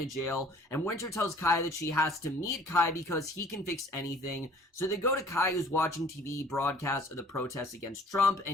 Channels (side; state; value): both; normal; correlation 0.52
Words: jail, and Winter tells Kai that she has to meet Kai because he can fix anything. So they go to Kai, who's watching TV broadcasts of the protests against Trump,